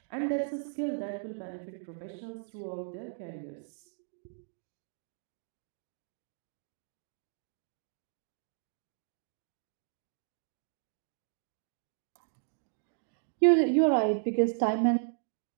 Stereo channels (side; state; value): left; silent; digital silence